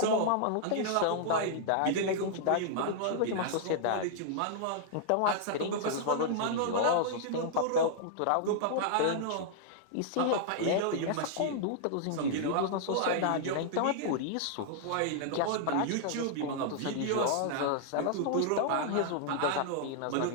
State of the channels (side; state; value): both; different; correlation -0.01